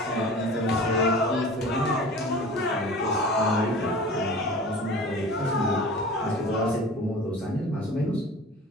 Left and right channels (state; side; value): normal; both; correlation 0.39